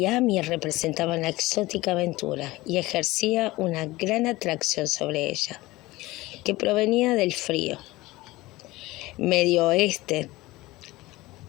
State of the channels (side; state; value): right; quieter; 19.6 dB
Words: representaba una exótica aventura y ejercía una gran atracción sobre ella, que provenía del frío Medio Oeste.